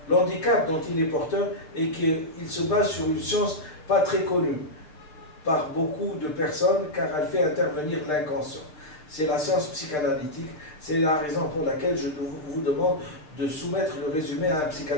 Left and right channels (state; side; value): late; right; 6.6 ms